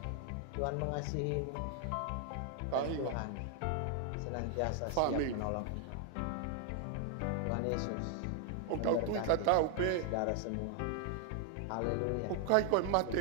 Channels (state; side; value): different; both; correlation 0.00